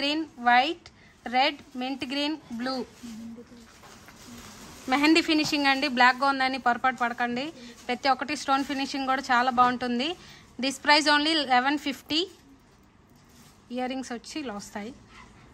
white, red, mint green, blue. Mehndi finishing అండి, బ్లాక్గా ఉందని పొరపాటు పడకండి. ప్రతి ఒక్కటి స్టోన్ ఫినిషింగ్ కూడా చాలా బాగుంటుంది. This price only 1150. Ear rings వచ్చి ఇలా వస్తాయి.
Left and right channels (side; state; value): both; identical; correlation 1.00